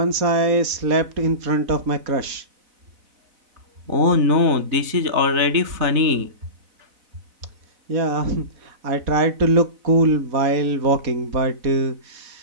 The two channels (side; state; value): left; late; 4.0 ms